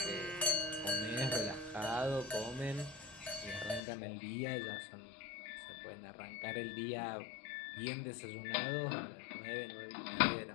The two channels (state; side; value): drops out; right; at 3.8 s